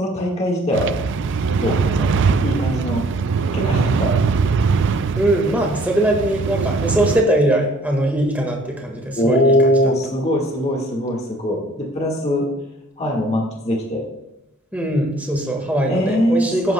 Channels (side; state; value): both; normal; correlation 0.58